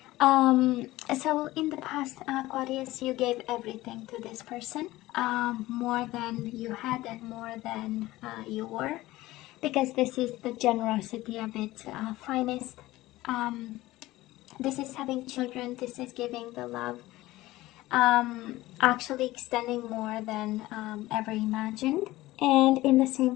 So in the past, Aquarius, you gave everything to this person, more than you had and more than you were, because this is the generosity of its finest. This is having children, this is giving the love, actually extending more than ever imagined. And in the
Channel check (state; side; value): quieter; right; 17.6 dB